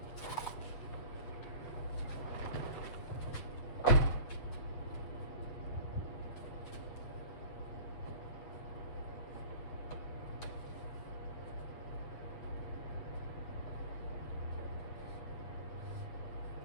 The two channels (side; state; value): right; late; 7.9 ms